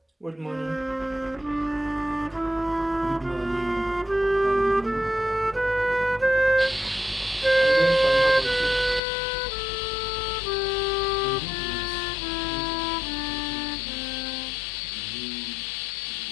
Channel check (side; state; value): right; drops out; at 9.0 s